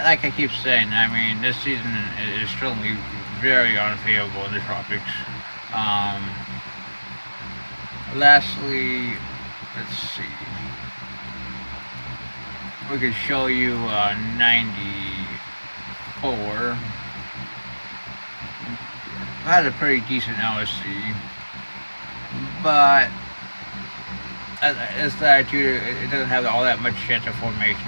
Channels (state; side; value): inverted; both; correlation -1.00